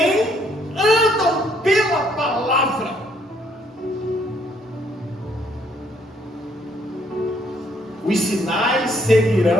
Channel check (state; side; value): normal; both; correlation 0.68